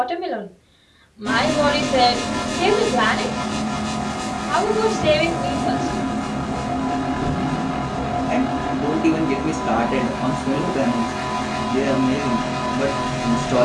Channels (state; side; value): identical; both; correlation 1.00